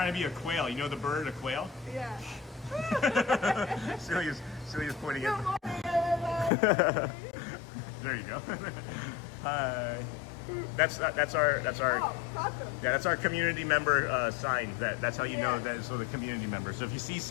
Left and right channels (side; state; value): right; drops out; at 6.5 s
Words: to be a quail. You know the bird, a quail? Yeah. Celia's pointing Good at morning, everybody. There you go. Hi. That's our Oh, awesome. yeah, that's our community member sign. That's how you know that it's a community member. So if you see